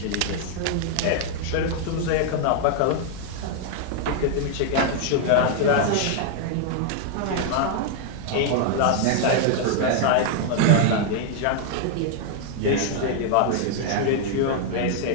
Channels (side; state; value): both; different; correlation 0.00